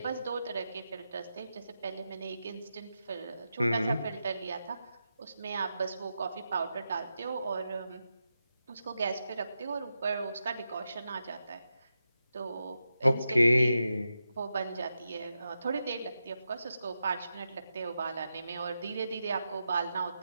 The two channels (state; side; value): inverted; both; correlation -0.88